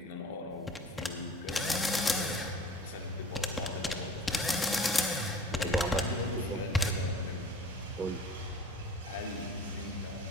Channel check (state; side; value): normal; both; correlation 0.44